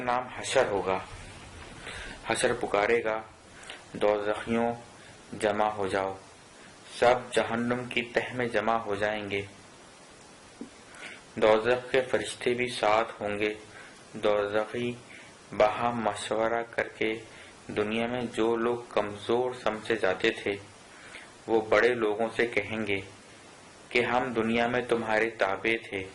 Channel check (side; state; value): both; identical; correlation 1.00